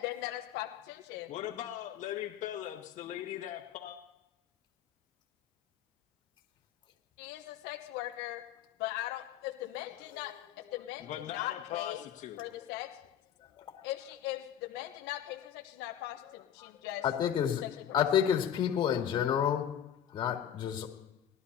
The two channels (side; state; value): right; quieter; 9.7 dB